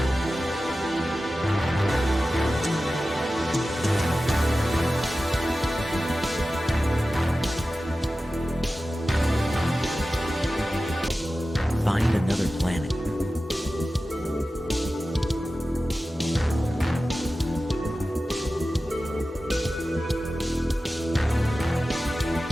Find another planet.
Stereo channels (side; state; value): both; normal; correlation 0.94